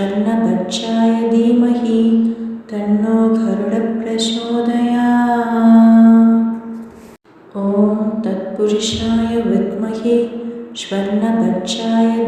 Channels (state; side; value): identical; both; correlation 1.00